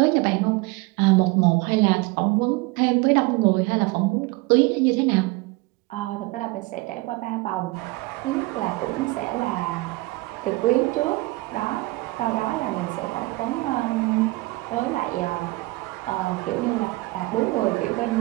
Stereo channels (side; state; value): left; quieter; 22.2 dB